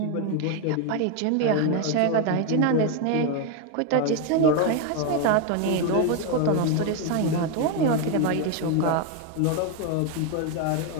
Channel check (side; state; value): both; different; correlation 0.01